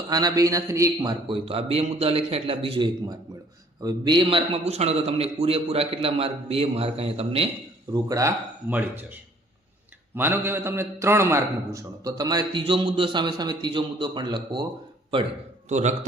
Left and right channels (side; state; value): both; normal; correlation 0.58